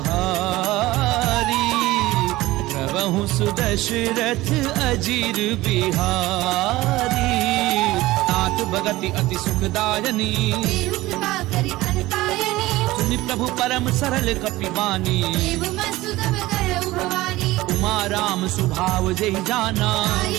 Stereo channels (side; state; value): left; quieter; 18.3 dB